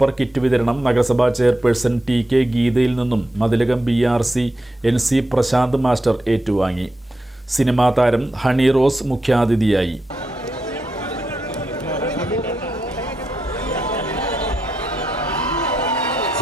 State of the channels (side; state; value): both; normal; correlation 0.86